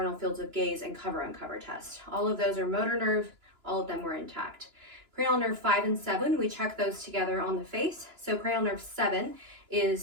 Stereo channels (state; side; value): late; left; 2.9 ms